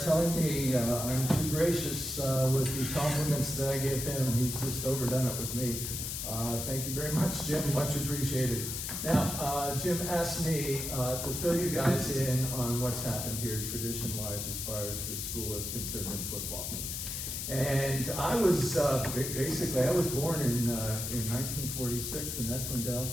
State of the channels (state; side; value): noise; left; hiss, 4 dB below the sound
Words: telling me I'm too gracious with the compliments that I give him. He's just overdone it with me. Thank you very much, Jim. Much appreciated. Now, Jim asked me to fill you guys in on what's happened here tradition-wise as far as the school is concerned in football. And I was, basically, I was born in 1946, and that's when Dal